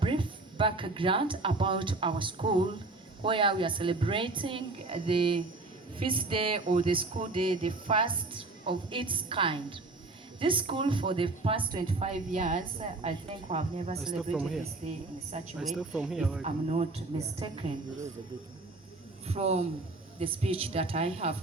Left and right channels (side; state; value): left; quieter; 3.3 dB